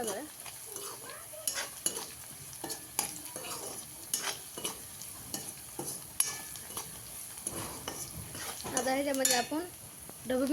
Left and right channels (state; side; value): identical; both; correlation 1.00